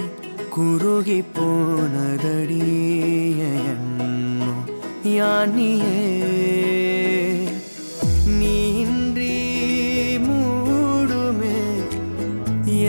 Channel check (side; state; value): both; inverted; correlation -1.00